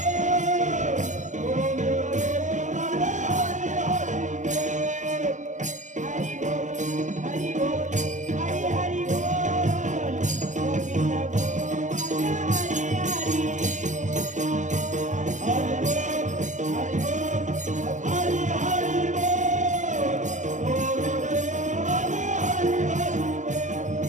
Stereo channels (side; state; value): left; late; 0.35 ms